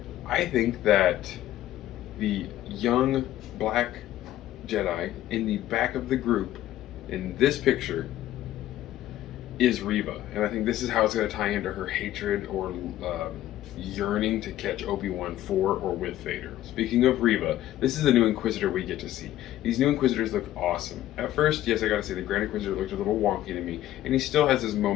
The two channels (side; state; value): right; quieter; 13.7 dB